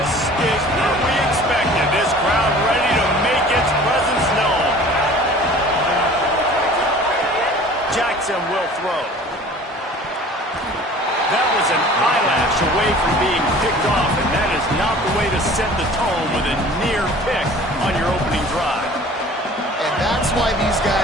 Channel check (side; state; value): both; normal; correlation 0.46